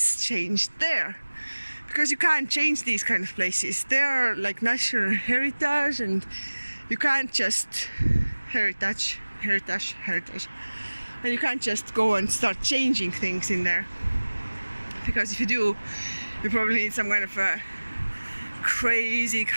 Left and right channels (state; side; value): inverted; both; correlation -1.00